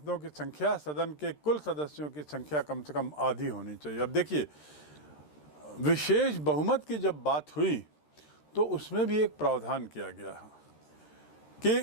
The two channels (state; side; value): late; right; 13 ms